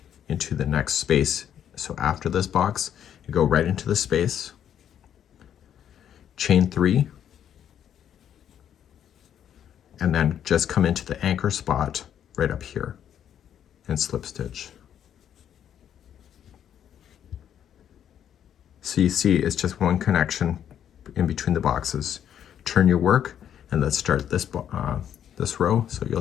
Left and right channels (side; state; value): right; quieter; 9.6 dB